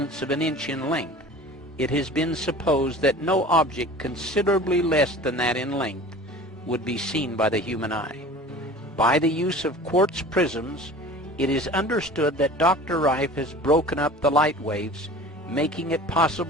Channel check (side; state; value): both; normal; correlation 0.41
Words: of an inch in length, it has been supposed that no object considerably less than that in length would be seen by the human eye. By the use of quartz prisms, It is understood that Dr. Rife has broken up the light waves, making it